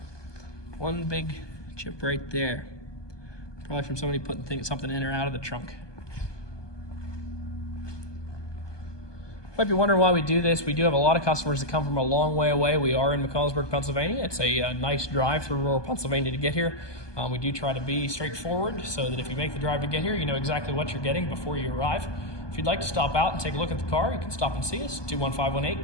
One big chip right there. Probably from somebody putting something in or out of the trunk. Might be wondering why we do this. We do have a lot of customers that come from a long way away. We are in McConnellsburg, Pennsylvania. It's a nice drive through rural Pennsylvania to get here. We do try to be straightforward so that if you make the drive to get here, you know exactly what you're getting before you arrive. If you'd like to stop out and take a look at the car, you can stop and see us,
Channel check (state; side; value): late; right; 1.2 ms